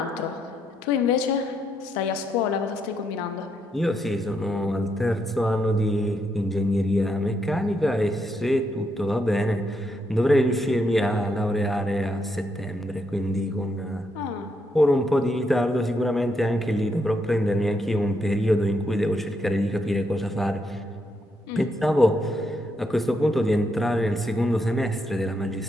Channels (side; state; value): both; normal; correlation 0.78